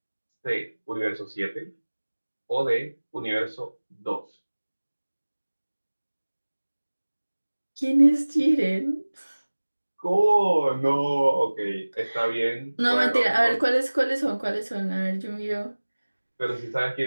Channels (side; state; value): both; inverted; correlation -1.00